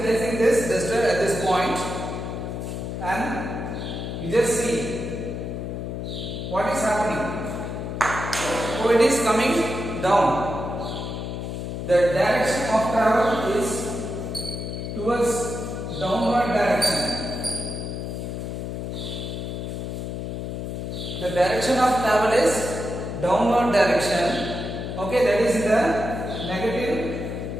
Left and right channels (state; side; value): noise; left; hum, 5 dB below the sound